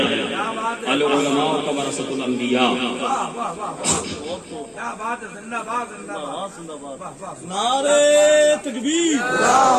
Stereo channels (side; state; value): both; identical; correlation 1.00